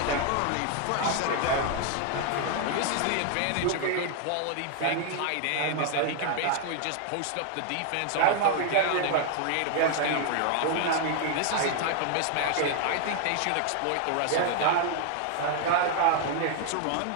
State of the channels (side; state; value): both; different; correlation 0.00